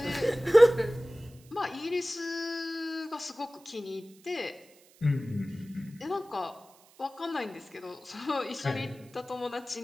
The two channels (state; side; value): noise; right; hiss, 27 dB below the sound